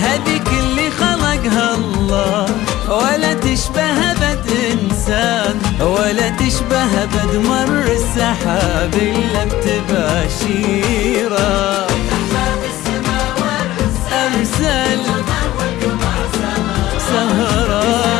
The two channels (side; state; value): right; quieter; 15.7 dB